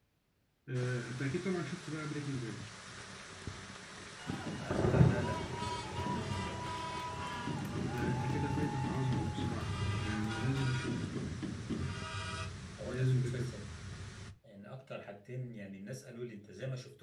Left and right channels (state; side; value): identical; both; correlation 1.00